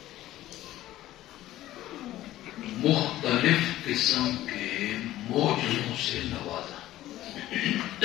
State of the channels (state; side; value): quieter; right; 14.7 dB